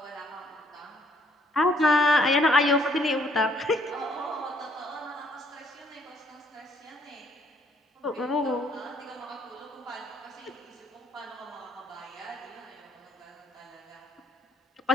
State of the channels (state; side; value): normal; both; correlation 0.66